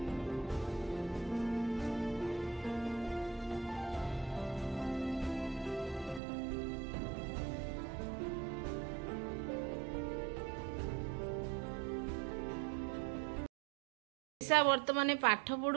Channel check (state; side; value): drops out; left; at 6.2 s